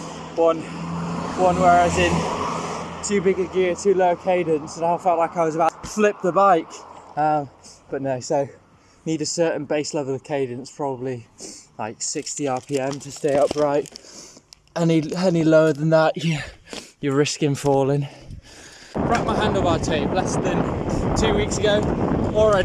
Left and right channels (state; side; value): identical; both; correlation 1.00